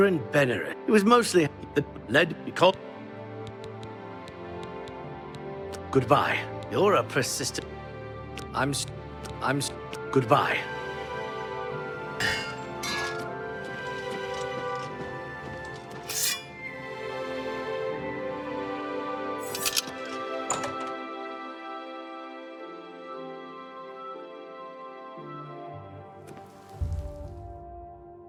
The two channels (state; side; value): identical; both; correlation 1.00